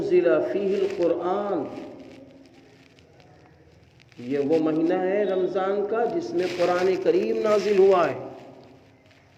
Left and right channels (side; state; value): both; identical; correlation 1.00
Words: فیہ القرآن، یہ وہ مہینہ ہے رمضان کا جس میں قرآن کریم نازل ہوا ہے.